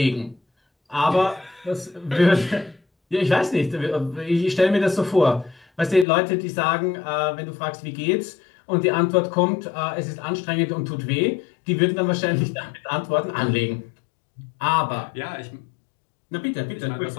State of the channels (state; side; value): drops out; right; at 6.1 s